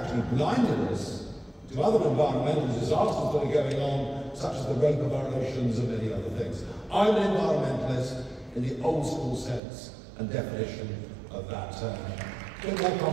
blinded us to other environmental disasters that are going on, such as the rape of our oceans and many other things. I'm an environmentalist in the old school sense and definition of that term. A bit more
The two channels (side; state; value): left; drops out; at 9.6 s